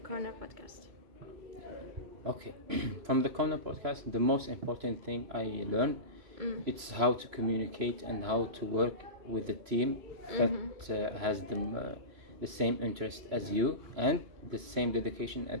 Corner podcast? Okay. From the Corner podcast, the most important thing I learned, it's how to communicate and how to work with the team that has the same interest as you and the same dedication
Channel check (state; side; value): late; left; 3.0 ms